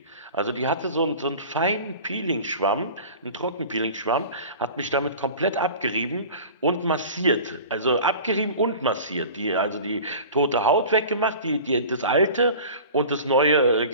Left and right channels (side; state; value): both; inverted; correlation -0.40